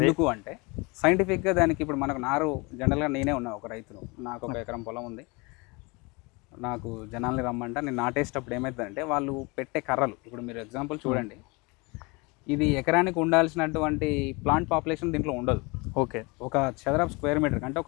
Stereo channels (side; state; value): right; quieter; 27.3 dB